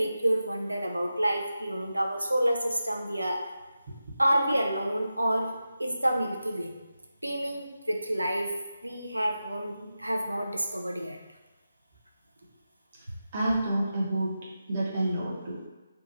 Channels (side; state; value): both; inverted; correlation -0.91